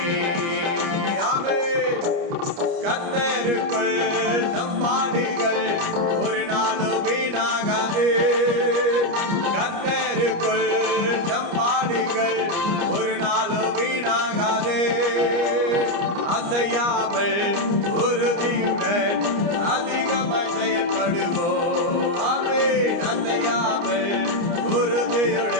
ஆமென். கர்த்தருக்குள் நம் பாடுகள் ஒரு நாளும் வீணாகாது, கர்த்தருக்குள் நம் பாடுகள் ஒரு நாளும் வீணாகாது. அசையாமல் உறுதியுடன் அதிகமாய் செயல்படுவோம். ஆமென். அசையாமல்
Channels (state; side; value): late; left; 29 ms